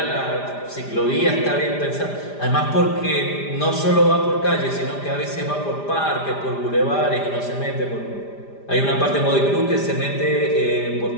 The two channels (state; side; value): late; right; 5.0 ms